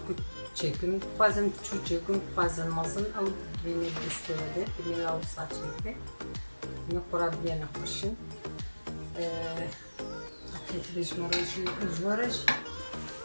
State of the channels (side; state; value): both; inverted; correlation -1.00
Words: çekim, bazen küçük çekim, bazen mazın, ama beni istedi, beni alsa çekti. Ne kurabiye ne hoşun. Akıtlı jvaraj.